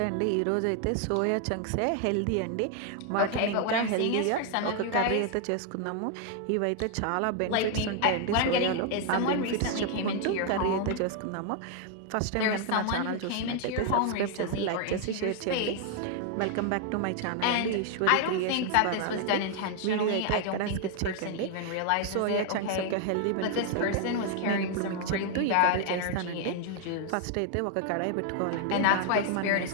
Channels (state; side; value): different; both; correlation 0.00